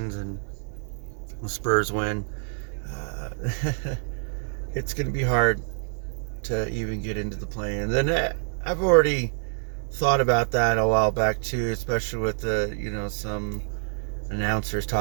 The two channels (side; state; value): left; silent; 57 dB below the other